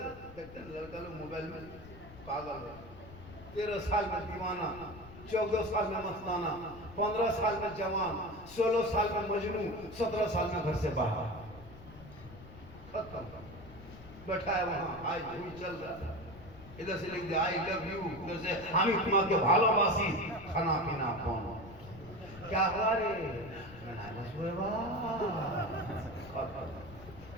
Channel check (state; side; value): noise; left; rumble, 17 dB below the sound